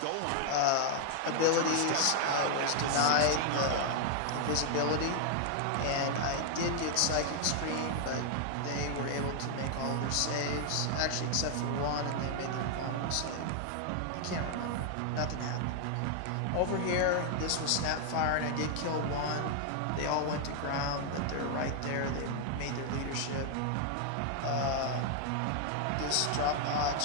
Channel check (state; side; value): different; both; correlation 0.00